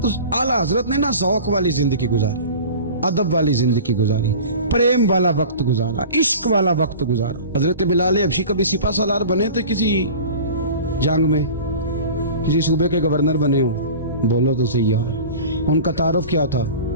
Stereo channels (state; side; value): inverted; both; correlation -0.38